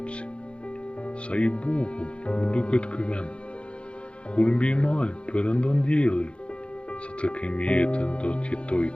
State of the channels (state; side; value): late; right; 0.058 ms